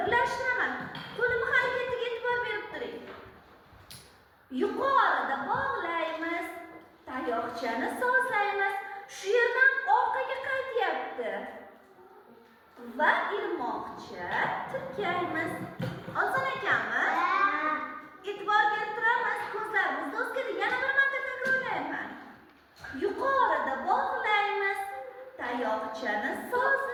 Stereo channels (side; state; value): both; identical; correlation 1.00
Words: Qo'limi harakatiga e'tibor berib turing. Yuqorida bog'laymiz, tayoqchani sozlaymiz. Shu yerdan orqaga qaytyapti. Va ilmoqcha tirkaymiz. Oson ekanmi? E'tibor berib turamiz. Ko'zlarimizni o'zgardi. Yana bir marta takrorlayman. Yuqorida bog'laymiz, tayoqchani